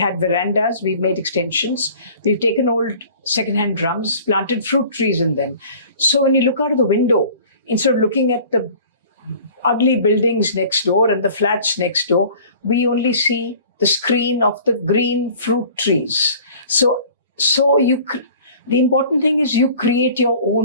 verandas. We've made extensions. We've taken old secondhand drums, planted fruit trees in them. So when you look out of the window, instead of looking at the ugly buildings next door and the flats next door, we only see the screen of the green fruit trees. So the important thing is you create your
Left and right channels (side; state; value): both; inverted; correlation -0.47